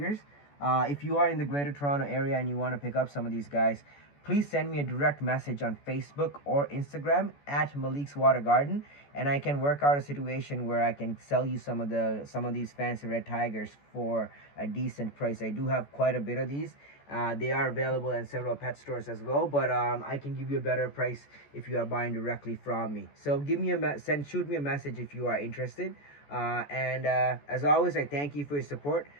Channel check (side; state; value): right; late; 14 ms